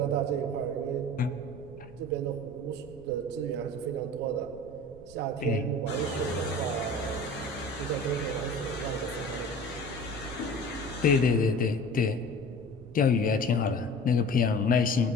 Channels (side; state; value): right; noise; rumble, 19 dB below the sound